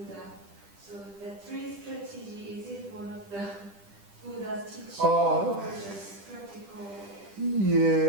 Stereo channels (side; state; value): left; late; 10 ms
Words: So the 3 strategy, is it one of the Buddha's teachings or just practical?